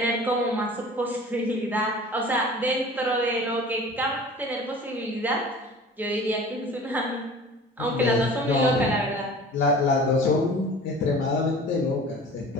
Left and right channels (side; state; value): both; normal; correlation 0.42